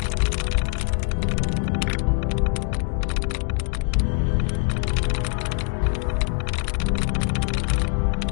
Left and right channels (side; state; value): right; quieter; 37.4 dB